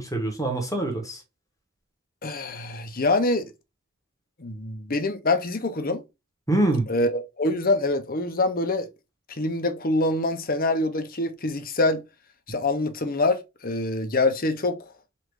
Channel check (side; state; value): both; normal; correlation 0.10